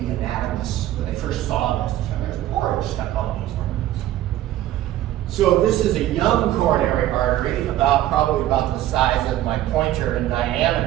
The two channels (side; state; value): left; quieter; 13.7 dB